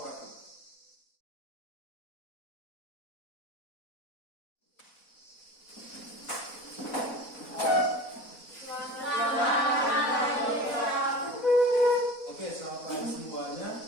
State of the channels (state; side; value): late; right; 4.0 ms